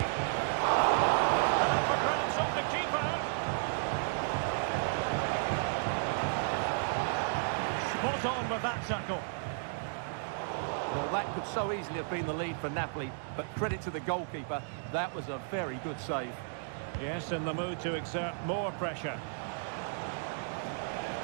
Spot on with that tackle. Well, that could so easily have been the lead for Napoli, but credit to the goalkeeper, that was a very good save. Yes, in the mood to exert more pressure.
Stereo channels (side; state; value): left; silent; digital silence